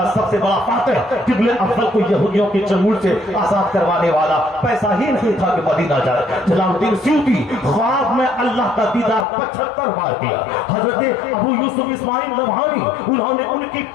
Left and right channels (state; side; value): drops out; right; at 9.2 s